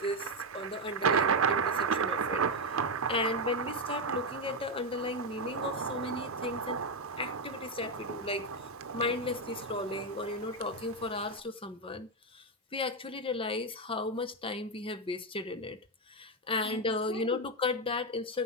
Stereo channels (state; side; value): normal; both; correlation 0.06